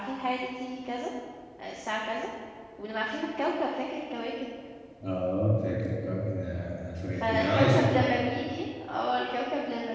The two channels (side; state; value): both; identical; correlation 1.00